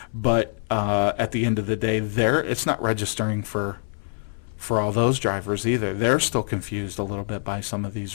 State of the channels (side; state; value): right; silent; 57 dB below the other